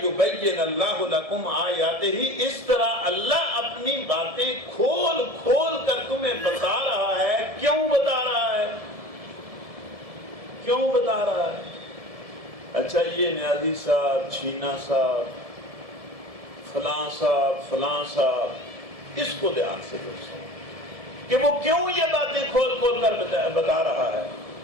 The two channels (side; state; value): left; late; 1.7 ms